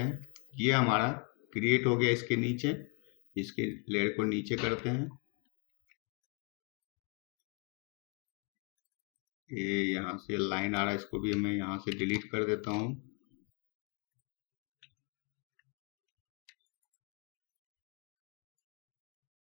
ये हमारा क्रिएट हो गया इसके नीचे। इसके लेयर को नीचे करते हैं, ये यहाँ से लाइन आ रहा है, इसको भी मैं यहाँ से डिलीट कर देता हूँ।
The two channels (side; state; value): right; quieter; 34.6 dB